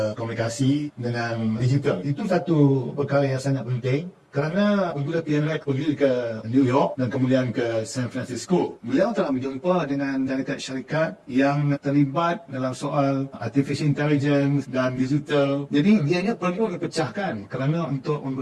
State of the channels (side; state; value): both; identical; correlation 1.00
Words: komunikasi dengan digital, itu satu perkara yang sangat penting. Kerana apabila PMX pergi ke New York dan kemudian ke San Francisco, beliau telah berjumpa dengan syarikat-syarikat yang terlibat dalam soal artificial intelligence dan digital. Jadi dia perlu dipecahkan kerana untuk